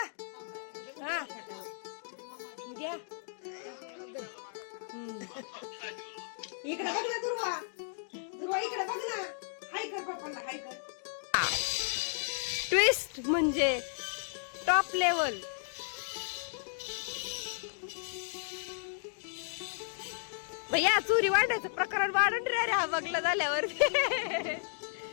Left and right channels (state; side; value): silent; right; digital silence